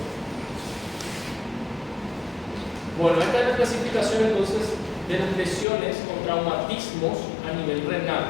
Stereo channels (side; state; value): right; drops out; at 5.7 s